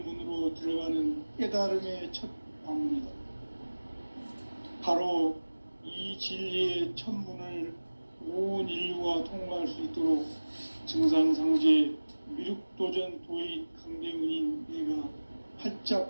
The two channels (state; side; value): inverted; both; correlation -1.00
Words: 들어가는 깨달음의 첫 방문이다. 바로 이 진리의 첫 문을 온 인류가 통과할 수 있도록 증산상제 미륵도전 도인 강대훈인 내가